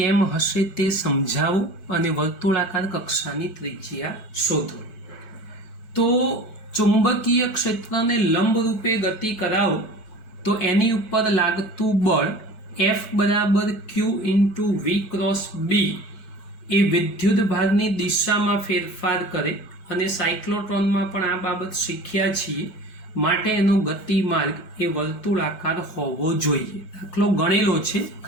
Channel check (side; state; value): right; late; 4.6 ms